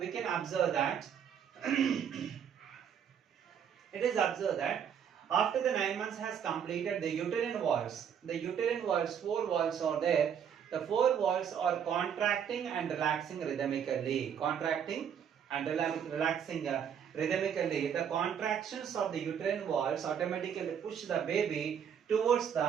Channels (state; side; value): quieter; left; 8.2 dB